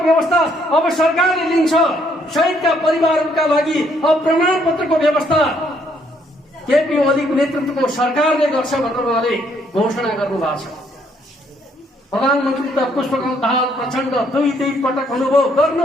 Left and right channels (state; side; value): normal; both; correlation 0.69